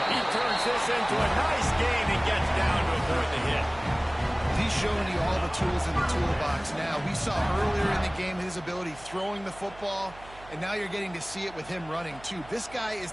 He turns this into a nice gain and gets down to avoid the hit. He's showing you all the tools in the toolbox now. We saw earlier in the game his ability throwing the football, and now you're getting to see it with him running too. This guy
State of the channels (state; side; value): noise; right; hum, 20 dB below the sound